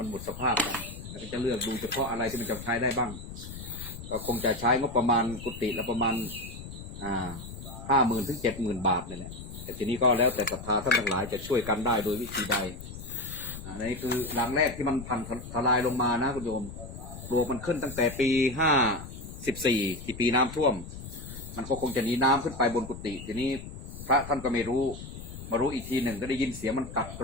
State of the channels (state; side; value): noise; left; rumble, 12 dB below the sound